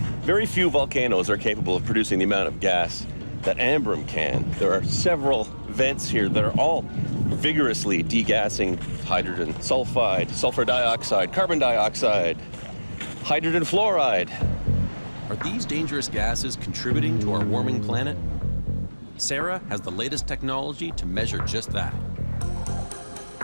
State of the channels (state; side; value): inverted; both; correlation -1.00